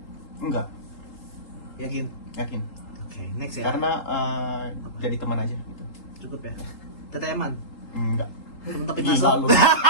Enggak, Yakin? yakin. Oke, next ya. Karena jadi teman aja gitu. Cukup ya. Teteman. Enggak. Untuk Gila lu.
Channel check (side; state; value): right; late; 3.8 ms